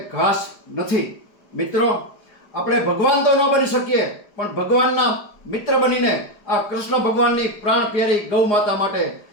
ઘાસ નથી. મિત્રો, આપણે ભગવાન તો ન બની શકીએ, પણ ભગવાનના મિત્ર બનીને આ કૃષ્ણ ભગવાનની પ્રાણ પ્યારી ગૌ માતા માટે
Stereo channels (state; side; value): late; right; 4.9 ms